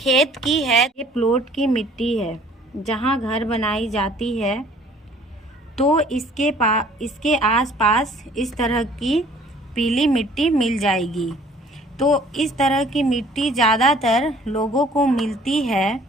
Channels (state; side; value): normal; both; correlation 0.55